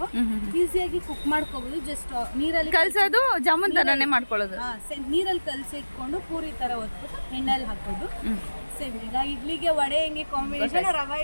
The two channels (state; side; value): inverted; both; correlation -1.00